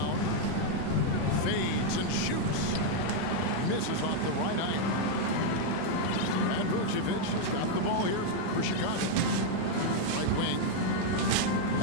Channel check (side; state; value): both; different; correlation 0.00